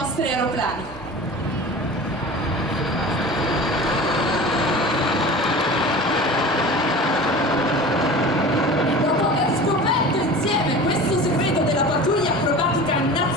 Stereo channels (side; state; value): both; normal; correlation 0.36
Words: aeroplani. E dopo aver scoperto insieme questo segreto della pattuglia acrobatica